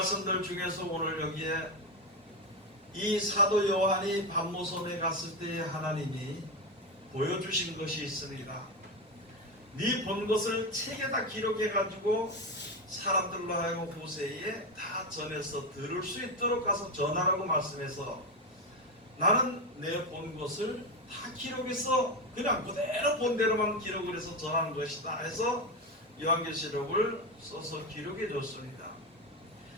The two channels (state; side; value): normal; both; correlation 0.13